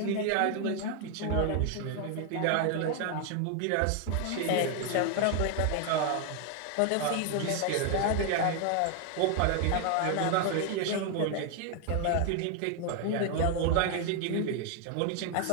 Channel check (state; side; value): different; both; correlation 0.01